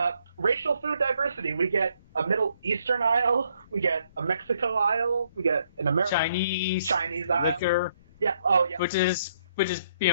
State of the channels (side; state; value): both; inverted; correlation -0.71